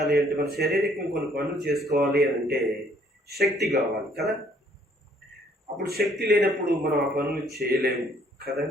అంటే, మన శరీరం కొన్ని పనులు చేసుకోవాలి అని అంటే శక్తి కావాలి కదా. అప్పుడు శక్తి లేనప్పుడు మనం ఆ పనులు చేయలేము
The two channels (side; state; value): both; normal; correlation 0.63